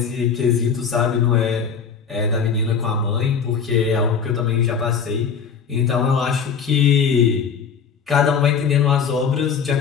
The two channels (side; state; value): right; quieter; 6.5 dB